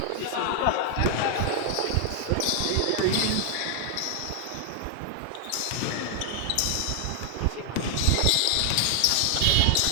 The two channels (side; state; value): both; different; correlation 0.00